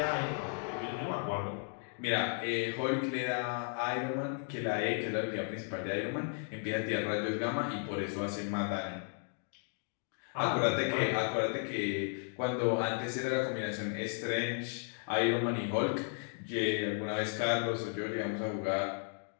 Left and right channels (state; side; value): silent; right; 55 dB below the other